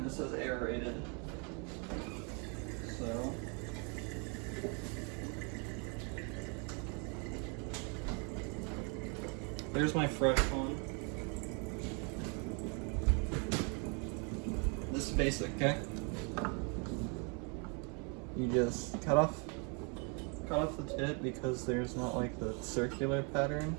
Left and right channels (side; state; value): left; quieter; 35.7 dB